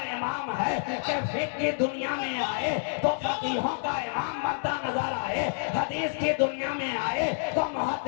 इमाम है कि फिक्र की दुनिया में आए तो फकीहों का इमाम बनता नजर आए, हदीस की दुनिया में आए तो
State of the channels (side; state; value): right; silent; digital silence